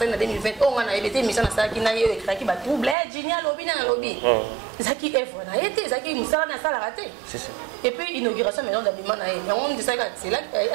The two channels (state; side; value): drops out; left; at 3.0 s